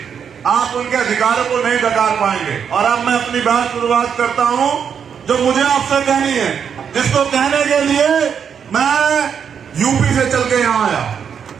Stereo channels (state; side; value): quieter; left; 7.4 dB